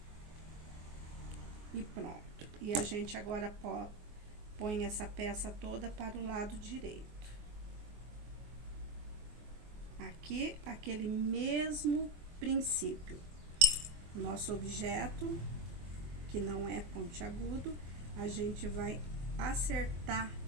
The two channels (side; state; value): left; late; 24 ms